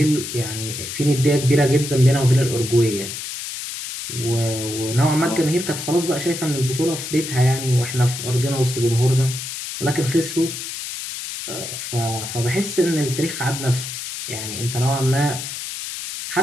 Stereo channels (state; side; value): noise; left; hiss, 7 dB below the sound